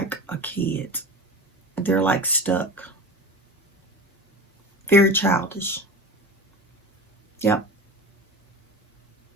a kid. They're like stuck. Very childish. Yep.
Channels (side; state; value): both; normal; correlation 0.32